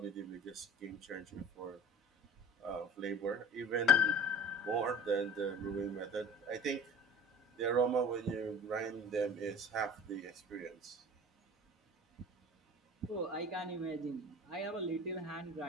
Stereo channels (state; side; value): normal; both; correlation 0.40